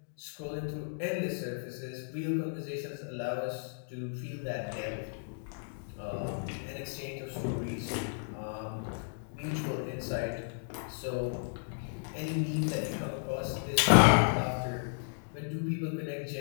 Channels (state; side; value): silent; right; digital silence